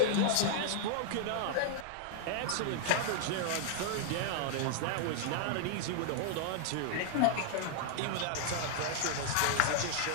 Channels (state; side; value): different; both; correlation -0.01